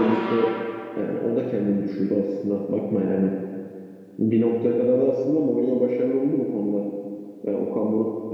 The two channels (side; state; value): both; identical; correlation 1.00